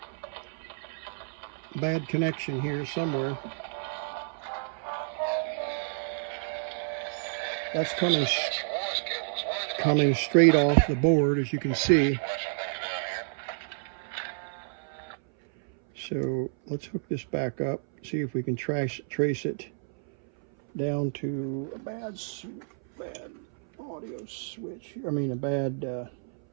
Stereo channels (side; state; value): left; silent; 58 dB below the other